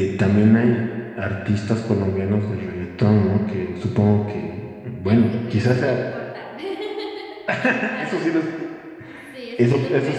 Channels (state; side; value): identical; both; correlation 1.00